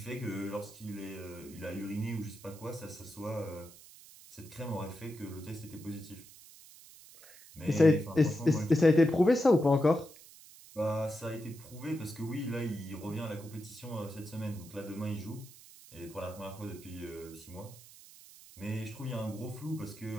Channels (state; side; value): noise; right; hiss, 20 dB below the sound